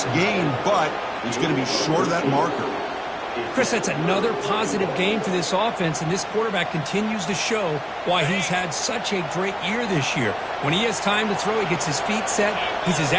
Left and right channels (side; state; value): both; identical; correlation 1.00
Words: gain, but it's going to be short of that marker. Chris, that's another positive game for this offense, and this quarterback continues to show why he's had such a great year this year. When he has time to throw, he gets his feet set. He's as